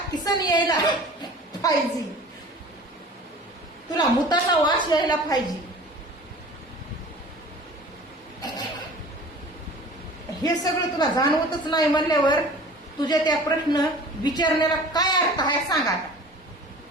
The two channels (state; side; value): normal; both; correlation 0.43